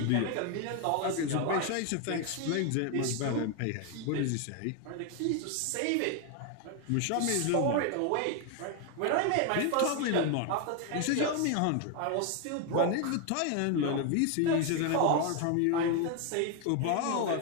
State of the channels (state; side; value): different; both; correlation 0.01